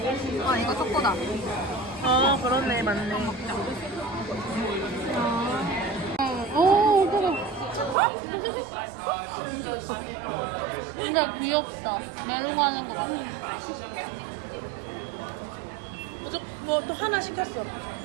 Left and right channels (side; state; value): left; drops out; at 8.0 s